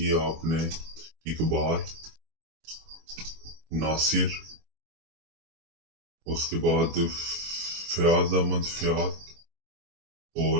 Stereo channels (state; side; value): late; left; 24 ms